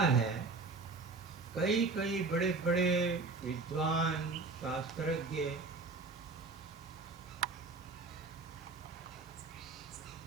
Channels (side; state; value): left; quieter; 3.9 dB